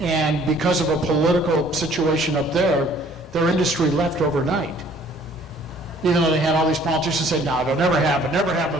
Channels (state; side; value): normal; both; correlation 0.57